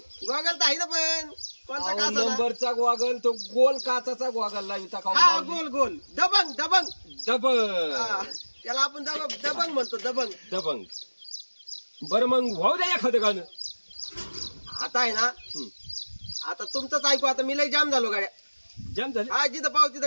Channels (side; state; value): both; inverted; correlation -1.00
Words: तर आहे ना पण कोणता काचा नंबरचा गोगल तो गोल काचाचा गोगल लाविता का हा गोल गोल दबंग दबंग दबंग हा, त्याला आपण दबंग म्हणतो दबंग दबंग बरं मग भाऊ द्या एखादं गाणं आता आहे ना आता तुमचंच ऐकू आता मी लय जाम झालो गाड्या जाम झाले हा जिथं पाव